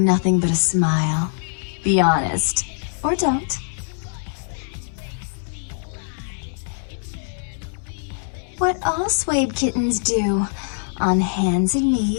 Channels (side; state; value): right; silent; digital silence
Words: nothing but a smile? Be honest. Or don't. What all Swabe kittens do. On hands and